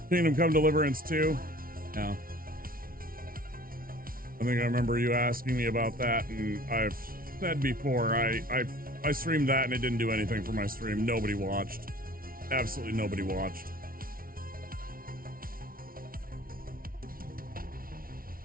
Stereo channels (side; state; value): left; late; 0.42 ms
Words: Kingdom Come Deliverance 2? Yeah. I think I remember you asking me about that, and I've said before, I streamed that and it didn't do anything for my stream. Nobody watched. Absolutely nobody watched.